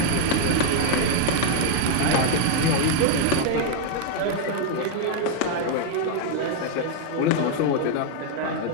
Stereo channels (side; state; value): both; different; correlation 0.00